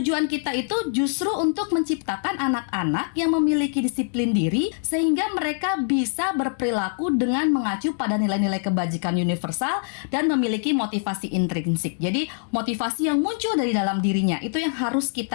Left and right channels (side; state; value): right; silent; digital silence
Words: kita itu justru untuk menciptakan anak-anak yang memiliki disiplin diri sehingga mereka bisa berperilaku dengan mengacu pada nilai-nilai kebajikan universal dan memiliki motivasi intrinsik. Jadi, motivasi yang muncul dari dalam dirinya itu yang harus